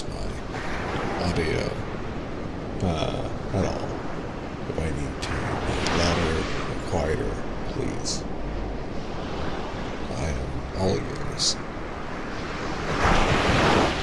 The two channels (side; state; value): both; identical; correlation 1.00